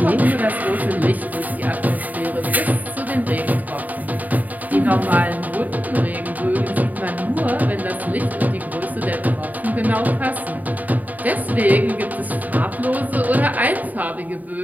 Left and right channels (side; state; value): left; late; 0.079 ms